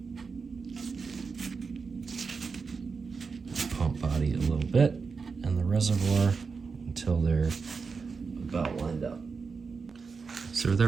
the pump body a little bit and the reservoir until they're about lined up. So with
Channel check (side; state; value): left; quieter; 5.0 dB